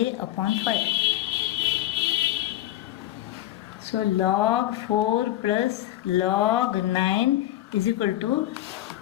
upon 5. So log 4 plus log 9 is equal to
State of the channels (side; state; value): right; quieter; 14.6 dB